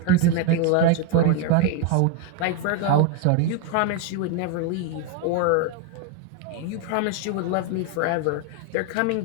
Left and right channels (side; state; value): both; different; correlation 0.01